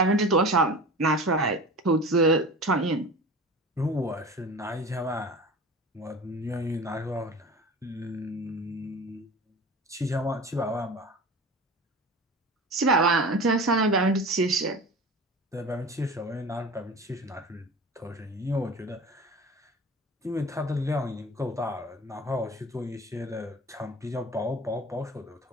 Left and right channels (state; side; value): normal; both; correlation 0.35